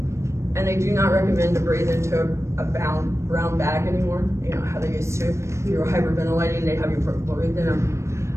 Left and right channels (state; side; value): late; left; 0.13 ms